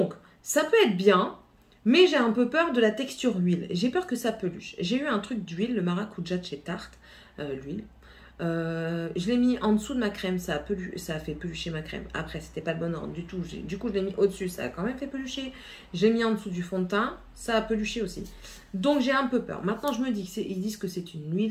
ça peut être bien, mais j'ai un peu peur de la texture huile. J'ai peur que ça peluche. J'ai eu un truc d'huile, le maracuja de chez Tarte, l'huile. Je l'ai mis en dessous de ma crème, ça a fait pelucher ma crème. Après, c'était pas le bon ordre du tout. Du coup, je l'ai mis au-dessus, ça a quand même fait pelucher. J'ai mis en dessous du fond de teint, ça a peluché aussi. Donc, j'ai un peu peur. Maintenant, je me dis qu'ils disent que c'est une huile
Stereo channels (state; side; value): identical; both; correlation 1.00